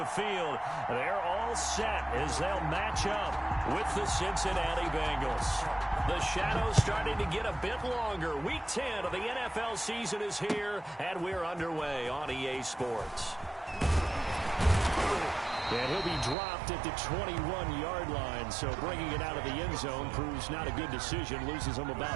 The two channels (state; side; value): drops out; left; at 16.4 s